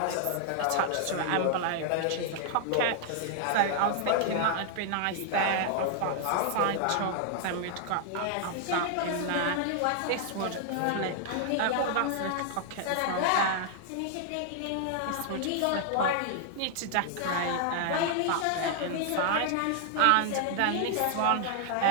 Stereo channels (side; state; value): both; different; correlation 0.00